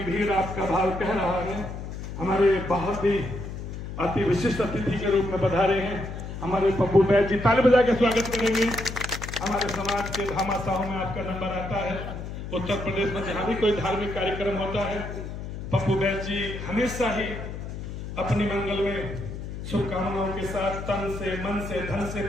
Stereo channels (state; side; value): noise; left; hum, 8 dB below the sound